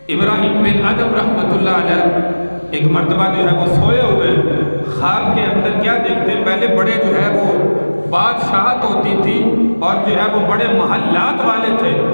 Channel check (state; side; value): inverted; both; correlation -1.00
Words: ابراہیم بن ادم رحمۃ اللہ علیہ ایک مرتبہ جو ہے وہ سوئے ہوئے خواب کے اندر کیا دیکھتے ہیں، پہلے بڑے جو ہے وہ بادشاہت ہوتی تھی اور جو ہے وہ بڑے محلات والے تھے،